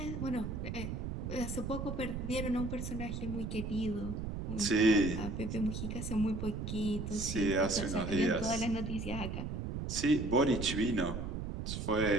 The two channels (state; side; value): noise; right; rumble, 4 dB below the sound